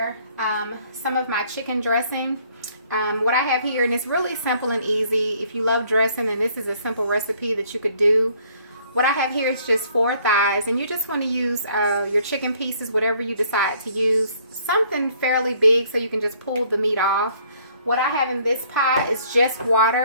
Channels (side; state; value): both; inverted; correlation -0.62